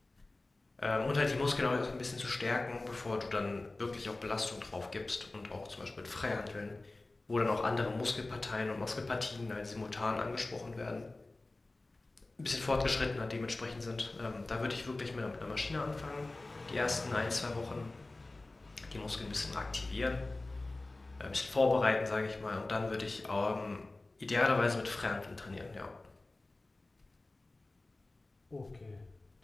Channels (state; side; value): quieter; right; 3.0 dB